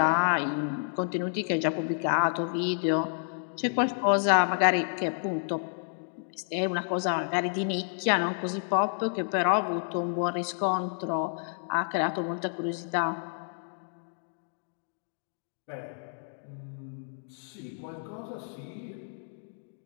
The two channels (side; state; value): right; silent; digital silence